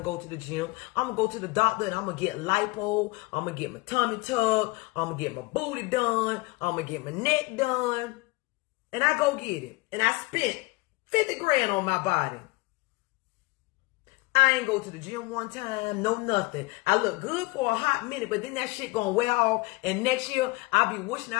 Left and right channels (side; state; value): right; quieter; 24.0 dB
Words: go to the gym. I'm going to go to the doctor and I'm going to get lipo. I'm going to get my tummy tucked. I'm going to get my booty done. I'm going to get my neck done. And I go get it. And I spent 50 grand on my body. I ain't go to the gym one time, no nothing. I look good for a hot minute, but then that shit gonna wear off. And next year, I'll be wishing